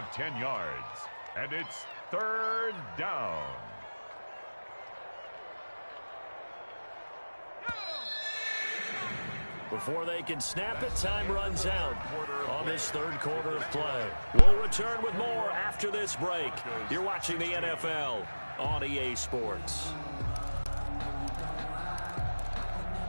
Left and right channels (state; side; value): inverted; both; correlation -1.00